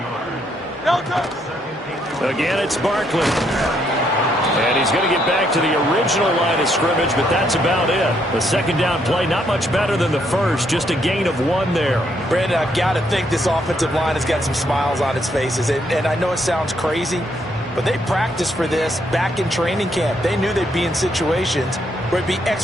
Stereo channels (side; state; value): both; normal; correlation 0.73